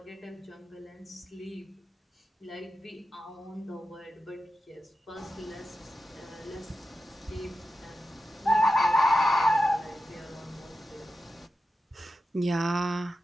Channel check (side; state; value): both; normal; correlation 0.91